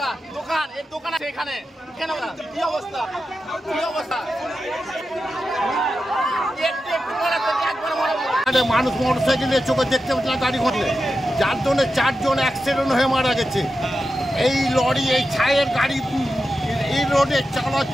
দোকান এর দোকান আছে এখানে, কেন কি অবস্থা, কি অবস্থা, মানুষ মোটরসাইকেলে চোখে দেখতে পাচ্ছে না গাড়ি ঘটলে, যার জন্য 4 জন অ্যাক্সিডেন্ট হয়ে মারা গেছে। এই লরি, এই ছায়ের গাড়ি এই রোডে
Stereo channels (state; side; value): normal; both; correlation 0.90